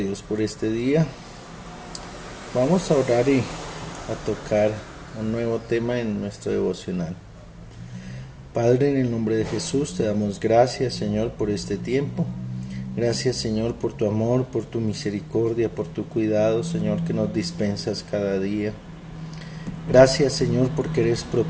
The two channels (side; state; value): both; identical; correlation 1.00